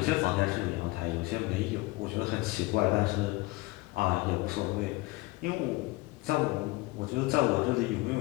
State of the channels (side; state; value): right; quieter; 21.7 dB